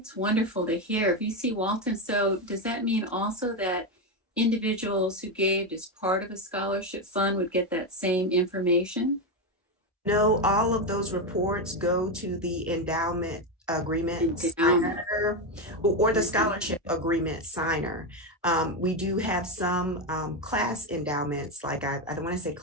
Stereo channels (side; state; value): both; normal; correlation 0.10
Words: wonderful to hear. VC Walton, so does that mean also that individuals who gave as part of a scholarship fund would get that same information? No, all of those reports go to the endowment agreement signer or the scholarship agreement signer. We do have some class endowments, like I don't want to say